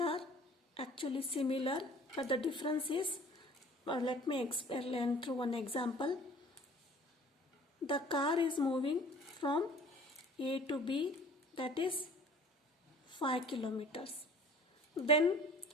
actually similar, but the difference is, let me explain through one example. The car is moving from A to B, that is 5 kilometers. Then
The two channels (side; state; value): both; normal; correlation 0.48